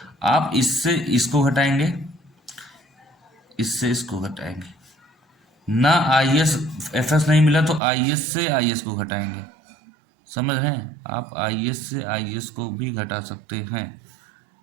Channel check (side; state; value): left; drops out; at 7.8 s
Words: आप इससे इसको घटाएंगे, इससे इसको घटाएंगे ना, IS FS नहीं मिला तो IS से IS को घटाएंगे, समझ रहे हैं आप, IS से IS को भी घटा सकते हैं,